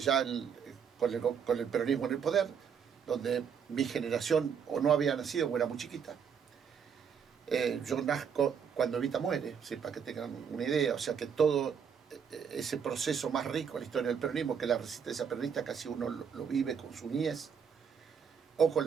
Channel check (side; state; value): left; quieter; 7.1 dB